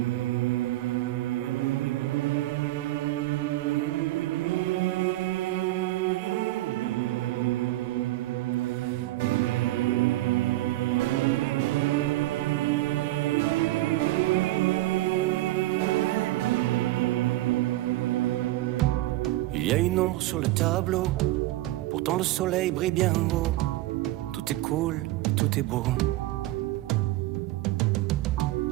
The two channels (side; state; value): left; quieter; 17.0 dB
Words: y a une ombre sur le tableau, pourtant le soleil brille bien haut. Tout est cool, tout est beau.